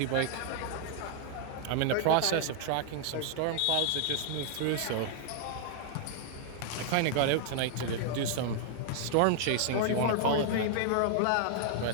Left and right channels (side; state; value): both; different; correlation 0.00